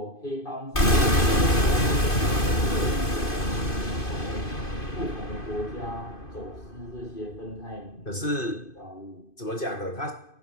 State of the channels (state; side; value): late; right; 2.5 ms